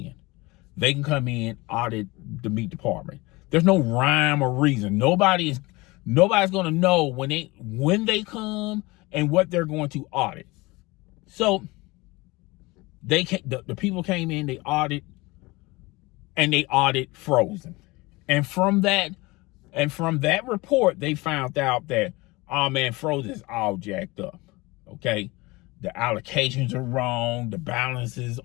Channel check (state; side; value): quieter; right; 22.7 dB